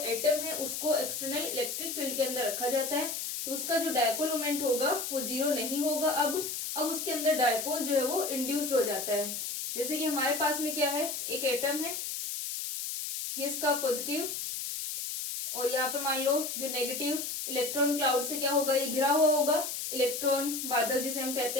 एटम है उसको एक्सटर्नल इलेक्ट्रिक फील्ड के अंदर रखा जाता है, तो उसका जो डायपोल मोमेंट होगा वो 0 नहीं होगा। अब उसके अंदर डायपोल जो है वो इंड्यूस्ड हो जाता है। जैसे कि हमारे पास में क्या है, एक एटम है, ये इसका पॉजिटिव, और यहाँ पर मान लो जो नेगेटिव इलेक्ट्रॉन क्लाउड से क्या होगा, ये घिरा हुआ होगा, इलेक्ट्रॉन बादल जिसे हम कहते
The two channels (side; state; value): left; noise; hiss, 4 dB below the sound